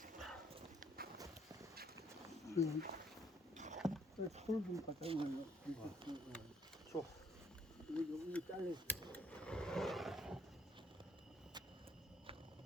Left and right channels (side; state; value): both; normal; correlation 0.66